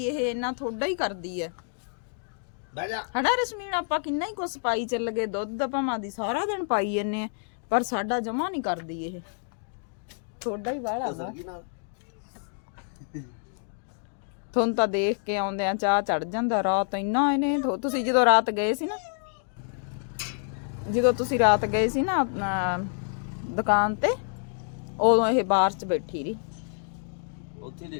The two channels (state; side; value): silent; right; 58 dB below the other